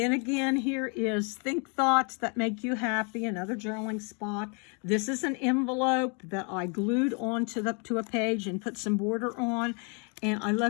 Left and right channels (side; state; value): right; quieter; 35.7 dB